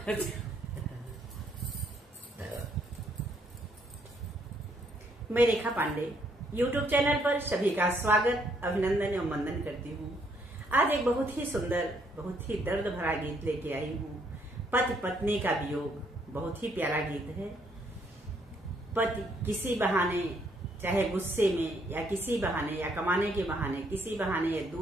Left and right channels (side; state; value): both; normal; correlation 0.70